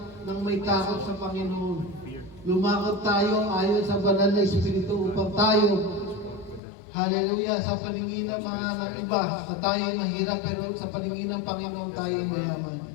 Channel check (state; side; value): drops out; right; at 6.6 s